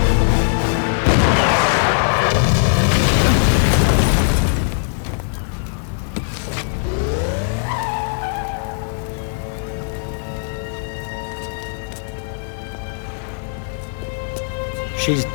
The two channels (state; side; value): silent; right; 66 dB below the other